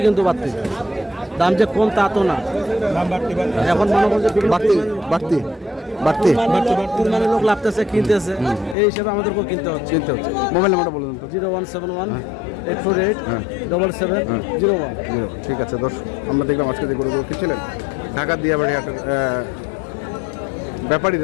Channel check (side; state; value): right; drops out; at 8.8 s